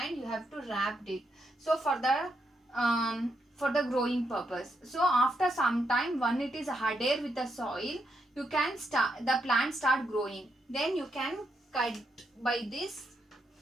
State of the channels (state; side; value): normal; both; correlation 0.80